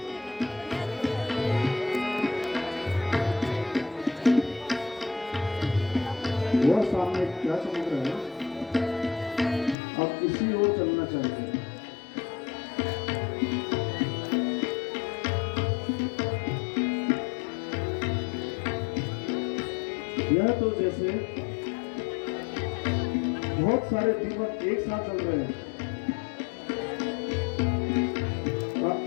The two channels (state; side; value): drops out; right; at 9.8 s